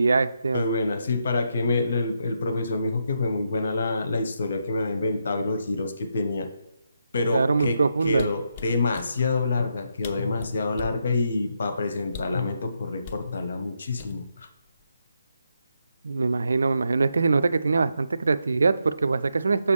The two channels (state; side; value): inverted; both; correlation -0.81